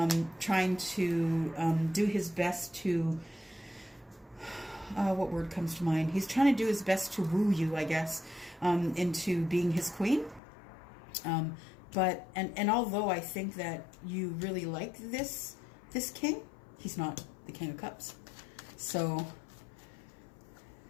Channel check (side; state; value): right; drops out; at 10.4 s